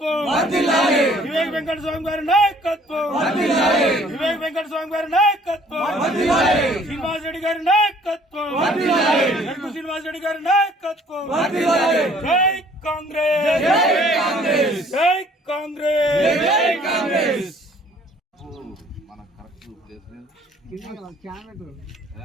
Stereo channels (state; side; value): normal; both; correlation 0.57